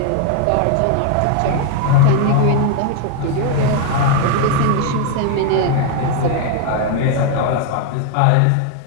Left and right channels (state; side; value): different; both; correlation 0.01